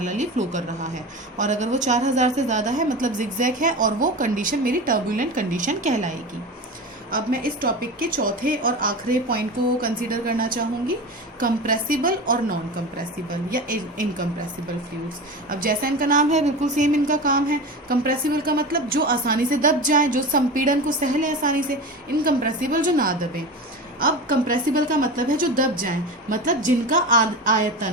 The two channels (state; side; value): normal; both; correlation 0.27